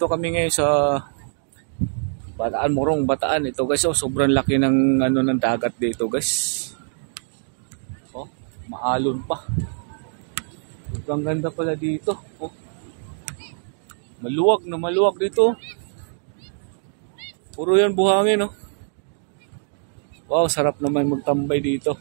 kami ngayon sa Bataan, Morong Bataan. Ito guys, oh, sobrang laki ng ng dagat dito guys. Oh, maalon pa. Sobrang ganda pala dito. Oh. Maluwag na maluwag dito. Puro yan buhangin, oh. Wow, sarap naman magtambay dito.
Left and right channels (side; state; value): left; silent; digital silence